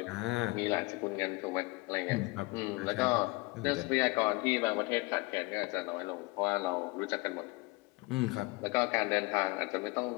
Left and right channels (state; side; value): quieter; right; 25.2 dB